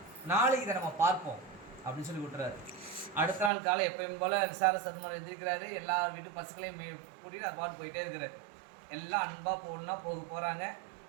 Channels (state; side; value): drops out; left; at 3.5 s